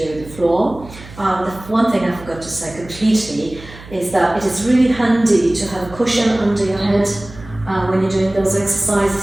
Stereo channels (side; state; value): right; noise; hum, 18 dB below the sound